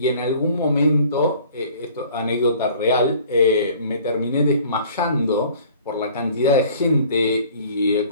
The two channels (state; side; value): inverted; both; correlation -0.52